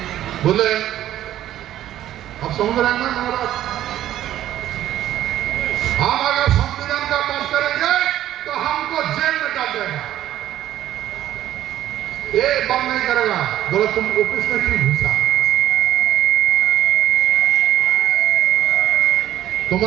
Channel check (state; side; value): quieter; left; 12.5 dB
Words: बोले अब संविधान में महाराज हम अगर संविधान का पास करेंगे तो हमको जेल में डाल देगा, ये बंद नहीं करेगा। बोले तुम ऑफिस में क्यों घुसा?